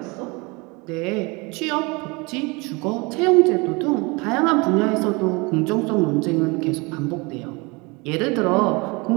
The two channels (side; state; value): left; quieter; 27.0 dB